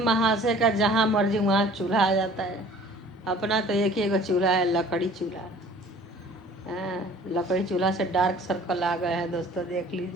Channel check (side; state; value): both; normal; correlation 0.49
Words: का जहाँ मर्जी वहाँ चूल्हा आ जाता है। अपना तो एक ही एगो चूल्हा है, लकड़ी चूल्हा। हाँ, लकड़ी चूल्हा से डार्क सर्कल आ गए हैं दोस्तों, देख